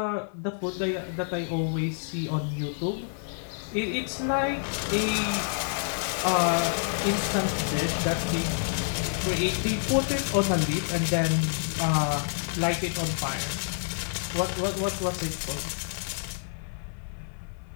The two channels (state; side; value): silent; right; 55 dB below the other